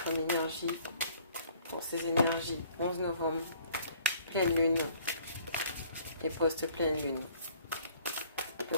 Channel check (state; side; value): inverted; both; correlation -0.57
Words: comme énergie pour ces énergies 11 novembre, pleine lune et post-pleine lune, à peu